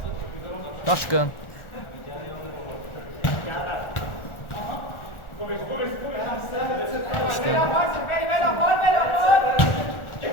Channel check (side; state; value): right; late; 1.4 ms